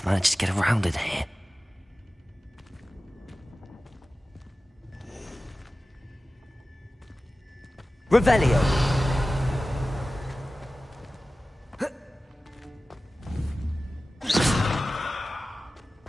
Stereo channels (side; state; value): both; normal; correlation 0.96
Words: manage to get around in here? Revelio.